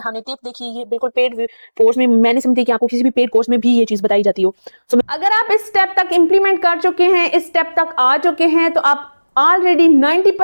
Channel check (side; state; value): both; inverted; correlation -1.00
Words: टिप देखी ये बिल्कुल पेड कोर्स में मैंने समझी कि आपको किसी भी पेड कोर्स में भी ये चीज बताई जाती हो। सो अगर आप इस स्टेप तक इंप्लीमेंट कर चुके हैं, इस स्टेप तक आ चुके हैं, तो आप ऑलरेडी